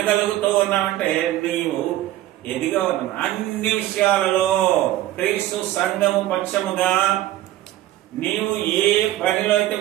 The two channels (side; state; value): left; quieter; 14.6 dB